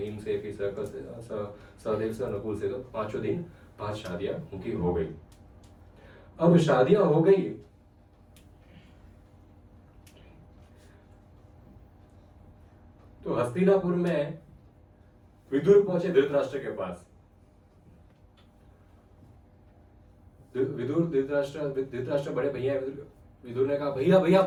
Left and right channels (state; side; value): identical; both; correlation 1.00